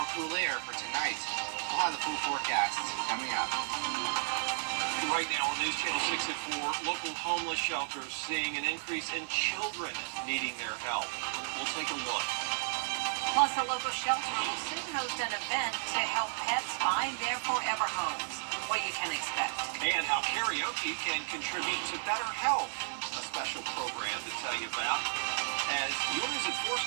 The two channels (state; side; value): silent; left; 56 dB below the other